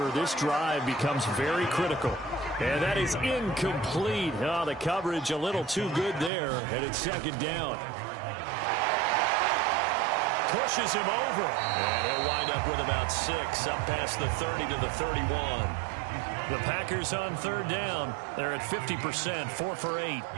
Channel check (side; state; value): left; drops out; at 6.3 s